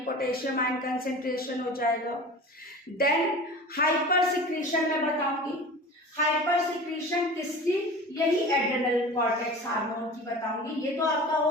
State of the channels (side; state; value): both; normal; correlation 0.36